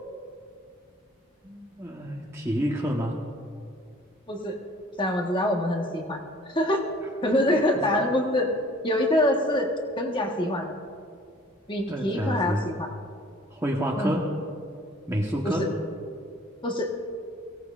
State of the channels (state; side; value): normal; both; correlation 0.53